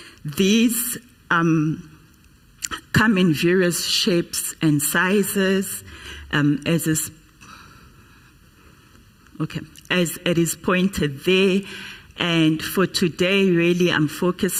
These come in various shapes and sizes, as it is pointed there. And for today, really, I'm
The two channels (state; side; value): identical; both; correlation 1.00